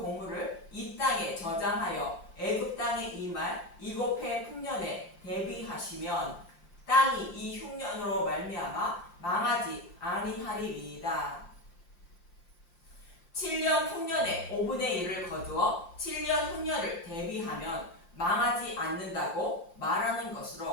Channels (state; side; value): late; right; 5.7 ms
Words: 이 땅에 저장하여 애굽 땅에 임할 7해 풍년에 대비하시면 땅이 이 흉년으로 말미암아 망하지 아니하리이다. 7년 풍년에 5분의 1을 거두어 7년 흉년을 대비하면 망하지 않는다고 말하는